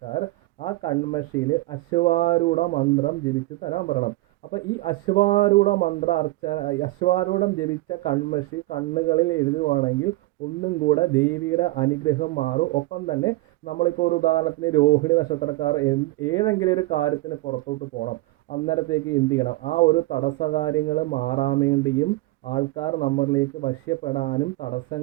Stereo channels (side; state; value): left; quieter; 19.8 dB